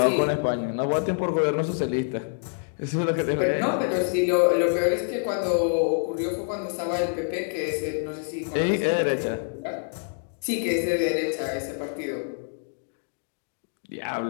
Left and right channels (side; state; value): right; silent; digital silence